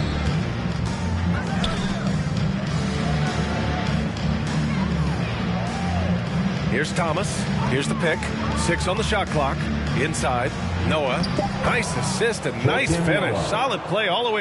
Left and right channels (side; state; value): both; identical; correlation 1.00